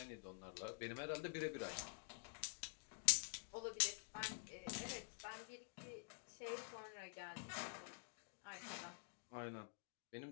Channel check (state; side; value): silent; right; digital silence